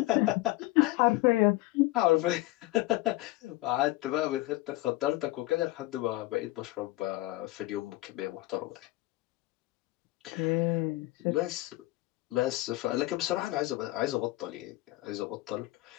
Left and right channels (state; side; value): quieter; right; 19.1 dB